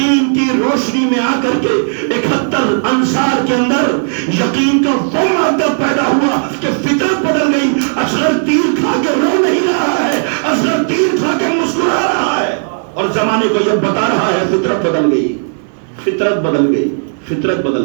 کی روشنی میں آ کر کے 71 انصار کے اندر یقین کا وہ مادہ پیدا ہوا کہ فطرت بدل گئی. اصغر تیر کھا کے رو نہیں رہا ہے, اصغر تیر کھا کے مسکرا رہا ہے اور زمانے کو یہ بتا رہا ہے فطرت بدل گئی, فطرت بدل گئی, فطرت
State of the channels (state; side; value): silent; left; 71 dB below the other